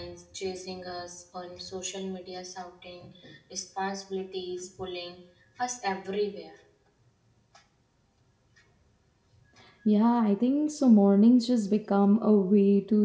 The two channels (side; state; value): both; identical; correlation 1.00